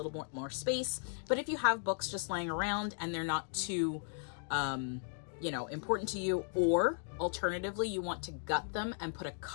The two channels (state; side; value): silent; right; 54 dB below the other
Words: more space. But if you have books just laying around and they're not too, important to you, or alternatively, you want to gut them and put a